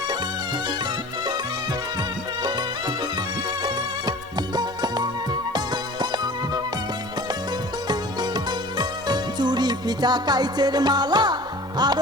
চুড়ি পিঠা কাইচের মালা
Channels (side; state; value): both; normal; correlation 0.42